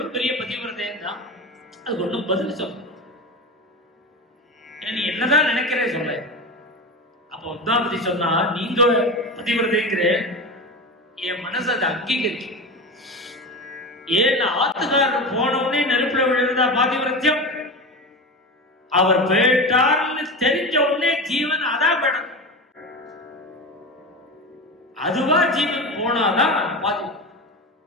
பெரிய பதிவிரதையும் தான். அது ஒன்றும் பதில் சொல்ல, நீ என்னதான் நினைக்கிறே சொல்ல. அப்ப பத்மாவதி சொன்னா, நீங்க பதிவிரதைங்கிற என் மனசு அதை அங்கீகரிச்சு. ஏன் ஆத்துக்காரர் போனவுடனே நெருப்புல விழுந்தா பாதிவிரத்தியம், அவர் போயிட்டார்னு தெரிஞ்ச உடனே ஜீவன் அதான் படம். அதுவா ஜீவன் போனாதான் பாதி.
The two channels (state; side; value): normal; both; correlation 0.25